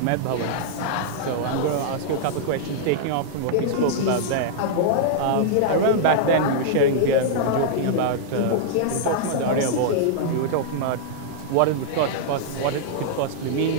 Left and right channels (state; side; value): different; both; correlation -0.02